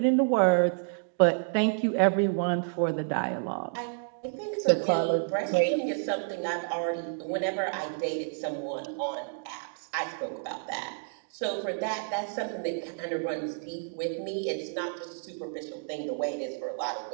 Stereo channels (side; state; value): left; silent; digital silence